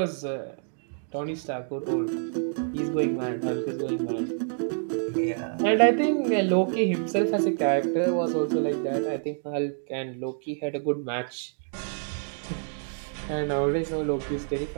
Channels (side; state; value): left; silent; digital silence